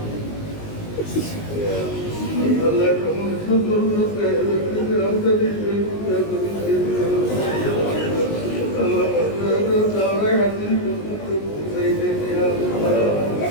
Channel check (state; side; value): late; right; 19 ms